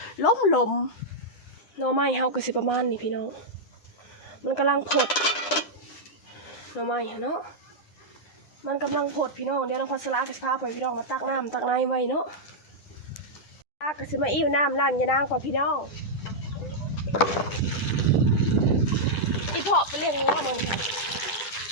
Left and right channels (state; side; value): late; right; 9.9 ms